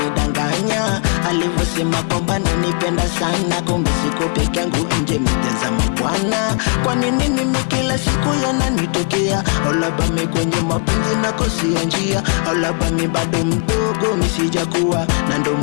Alivyosema kwamba ananipenda sana, kumbe siko peke yangu nje mijaza mabwana. Kwa nini mimi kila siku yananitokea? Au labda mimi kwenye mapenzi nakosia njia? Au labda mimi bado mdogo misijakuwa, na ndo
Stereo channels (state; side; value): quieter; right; 38.8 dB